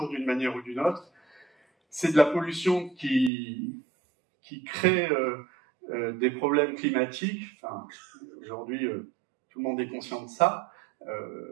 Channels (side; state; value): left; drops out; at 3.3 s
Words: d'une manière ou d'une autre. C'est de la pollution qui crée des problèmes climatiques. Enfin, aujourd'hui, tout le monde est conscient de ça.